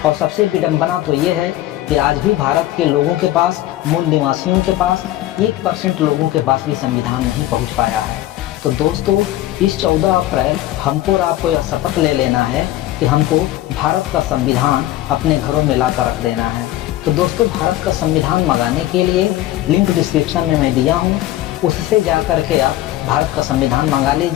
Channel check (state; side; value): quieter; right; 14.7 dB